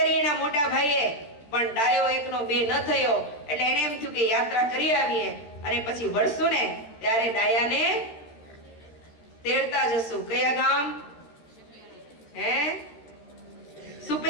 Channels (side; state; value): right; late; 13 ms